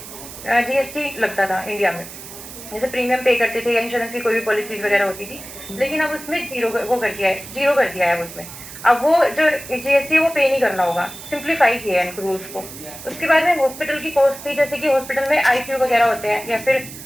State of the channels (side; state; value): right; noise; hiss, 14 dB below the sound